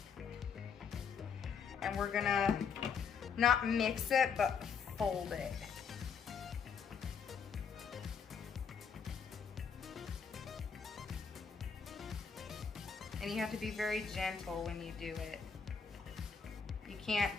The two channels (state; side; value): quieter; right; 6.3 dB